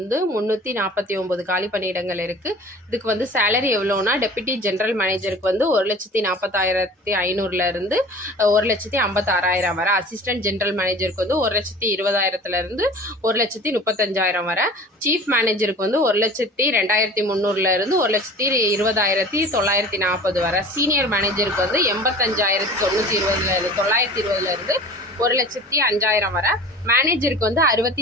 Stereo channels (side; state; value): both; normal; correlation 0.41